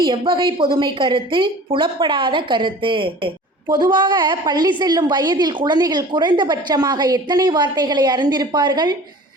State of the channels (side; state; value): both; normal; correlation 0.43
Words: எவ்வகை பொதுமை கருத்து? புலப்படாத கருத்து. பொதுவாக பள்ளி செல்லும் வயதில் குழந்தைகள் குறைந்தபட்சமாக எத்தனை வார்த்தைகளை அறிந்திருப்பார்கள்?